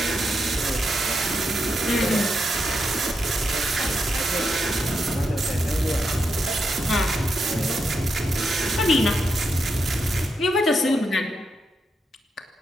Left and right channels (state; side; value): normal; both; correlation 0.83